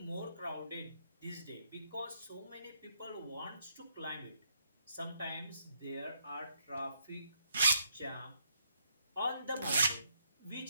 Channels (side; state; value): both; inverted; correlation -0.73